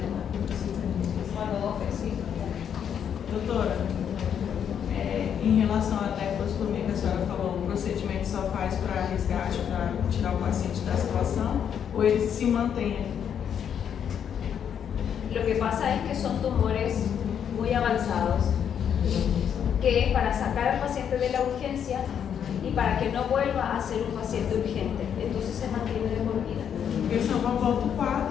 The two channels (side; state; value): right; quieter; 8.4 dB